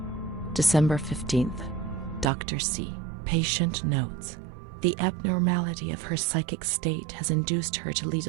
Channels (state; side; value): drops out; left; at 2.2 s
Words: December 15th. Dr. C. Patient notes. The abnormality of her psychic state has induced her to lead